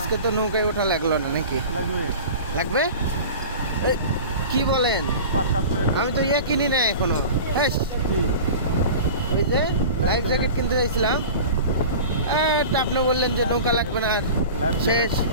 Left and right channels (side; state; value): both; inverted; correlation -0.36